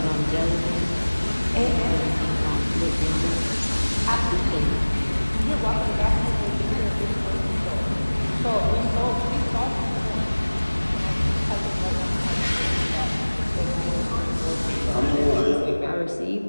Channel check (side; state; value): both; inverted; correlation -1.00